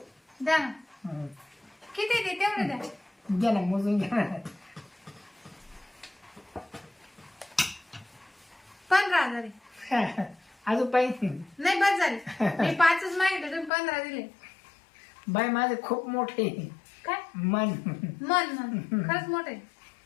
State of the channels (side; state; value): right; drops out; at 13.7 s